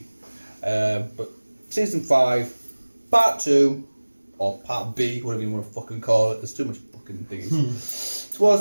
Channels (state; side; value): inverted; both; correlation -1.00